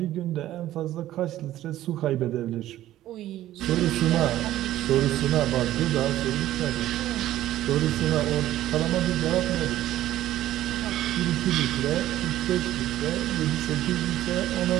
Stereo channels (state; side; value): quieter; left; 14.0 dB